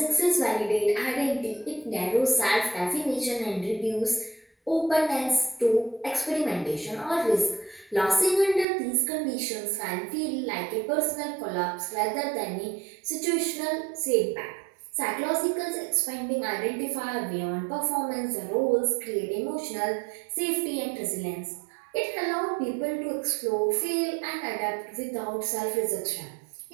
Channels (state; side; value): drops out; left; at 8.7 s